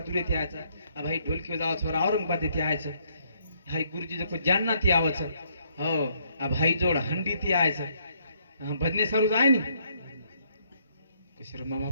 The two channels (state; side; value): inverted; both; correlation -0.69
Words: येते यायचं भाई ढोलकी जावं औरंगाबाद येते यायचं हाय गुरुजी जो जानना ती आवचं हो भाई जोड हंडी ती यायचं भजने सारूच आहे नी कशर मामा